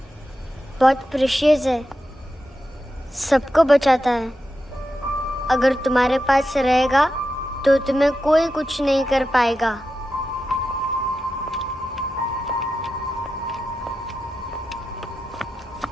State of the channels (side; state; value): both; normal; correlation 0.89